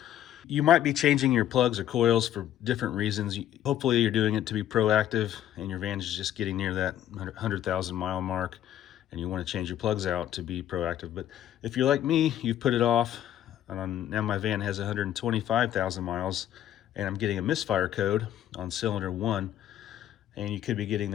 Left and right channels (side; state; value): right; quieter; 11.7 dB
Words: You might be changing your plugs or coils for different reasons. Hopefully you're doing it to be proactive and your van is just getting near that 100,000 mile mark and you want to change your plugs out to be proactive. But if you're like me, you've put it off. Now my van has 125,000 miles and I'm getting a misfire code on cylinder 1. And you could be getting